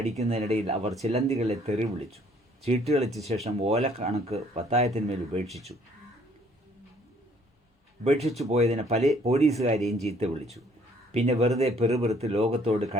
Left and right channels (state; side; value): normal; both; correlation 0.62